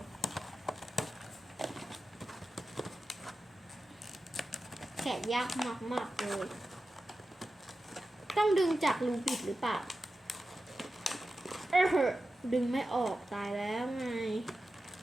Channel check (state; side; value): normal; both; correlation 0.93